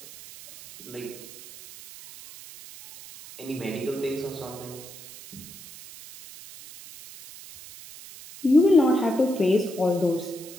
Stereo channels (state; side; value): noise; right; hiss, 16 dB below the sound